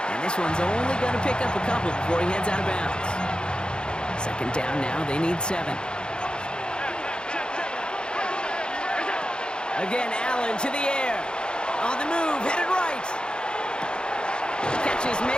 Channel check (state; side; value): late; right; 0.050 ms